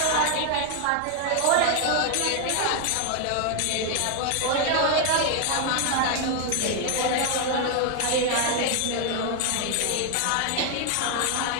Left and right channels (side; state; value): both; different; correlation 0.00